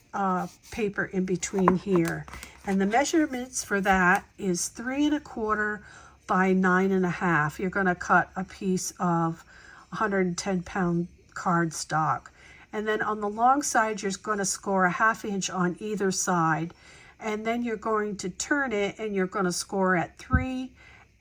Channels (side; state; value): both; identical; correlation 1.00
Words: paper in between here. And the measurements for that is 3 1/4 by 9 1/2. You're going to cut a piece of 110-pound cardstock. And then on the long side, you're going to score a 1/2 inch on either side. And then you're going to turn it, and you're going to score at 3